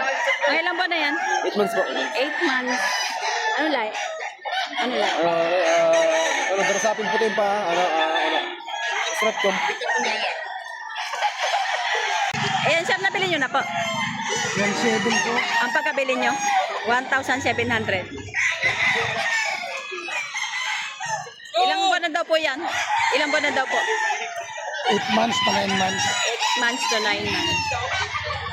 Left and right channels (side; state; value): both; identical; correlation 1.00